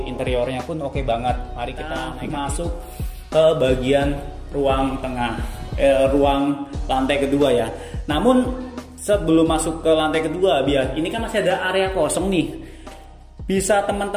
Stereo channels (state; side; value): identical; both; correlation 1.00